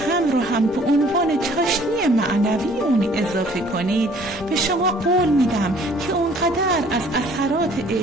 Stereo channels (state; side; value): normal; both; correlation 0.56